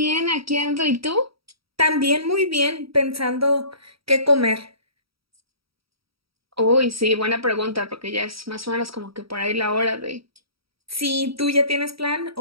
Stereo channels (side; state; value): left; late; 0.75 ms